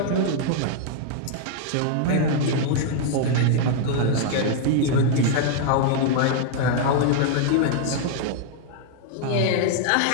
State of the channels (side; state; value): both; different; correlation 0.00